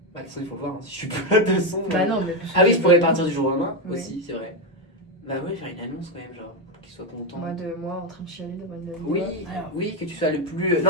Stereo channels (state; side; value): normal; both; correlation 0.07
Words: Bah de toute façon il faut le voir, hein. Si je suis plus là de son. Bah non, mais. Ah oui je pourrais partir du jour au lendemain Oui. aussi c'est vrai. Bah ouais faire une annonce quand même genre pour qu'il soit content. Moi en train de chialer devant une Oui, Alors, oui que tu sois le plus...